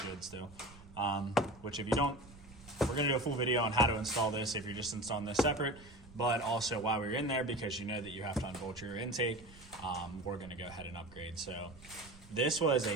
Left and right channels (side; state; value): right; noise; rumble, 20 dB below the sound